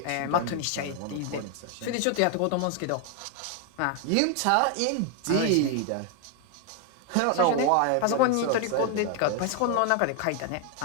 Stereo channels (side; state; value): both; different; correlation 0.01